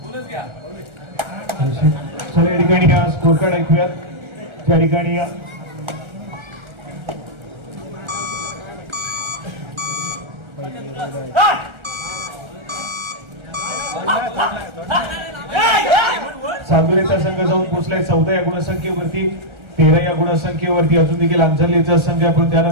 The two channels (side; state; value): left; late; 1.3 ms